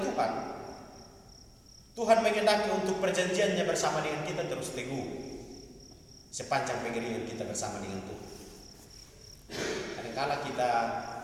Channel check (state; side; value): identical; both; correlation 1.00